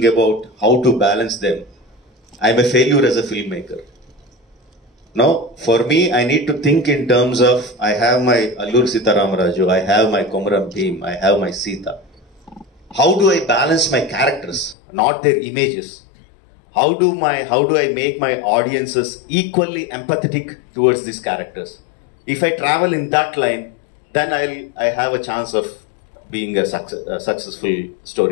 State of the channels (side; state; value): right; drops out; at 14.8 s